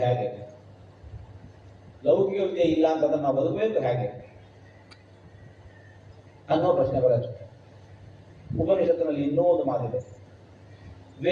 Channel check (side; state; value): both; identical; correlation 1.00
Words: ಹೇಗೆ? ಲೌಕಿಕ ವಿದ್ಯೆ ಇಲ್ಲ ಅಂತಂದ್ರೆ ನಾವು ಬದುಕಬೇಕು ಹೇಗೆ? ಅನ್ನೋ ಪ್ರಶ್ನೆ ಬರುತ್ತೆ. ಉಪನಿಷತ್ತಿನಲ್ಲಿ ಇನ್ನೂ ಒಂದು ಮಾತಿದೆ,